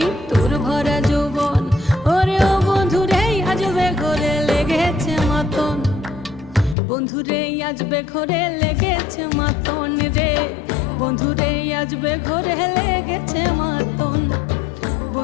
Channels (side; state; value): right; drops out; at 6.8 s